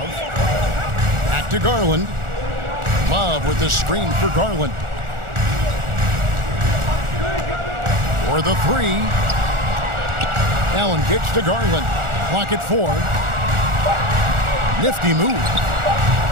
Back to Garland. Love with the screen for Garland. For the three. Allen kicks to Garland. Clock at 4. Nifty move.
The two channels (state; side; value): late; left; 1.4 ms